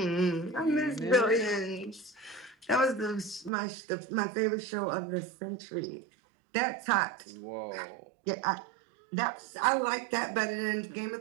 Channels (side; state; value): left; drops out; at 3.5 s